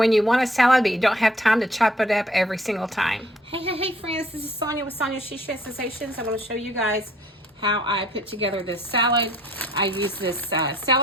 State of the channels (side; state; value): both; normal; correlation 0.60